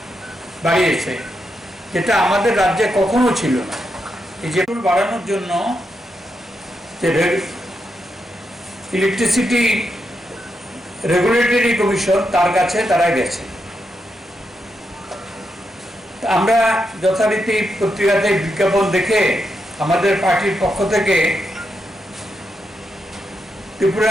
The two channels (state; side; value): normal; both; correlation 0.84